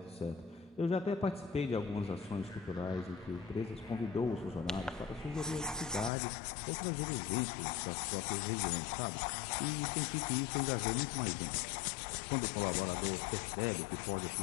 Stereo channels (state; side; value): drops out; right; at 6.1 s